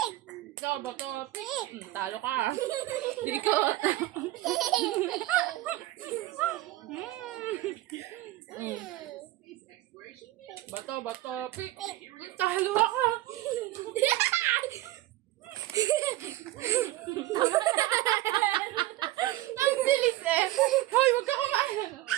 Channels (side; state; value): left; quieter; 16.5 dB